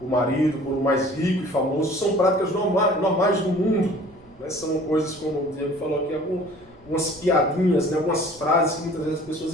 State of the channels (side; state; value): right; noise; rumble, 28 dB below the sound